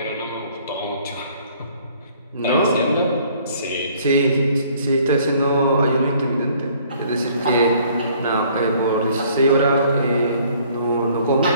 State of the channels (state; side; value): inverted; both; correlation -0.59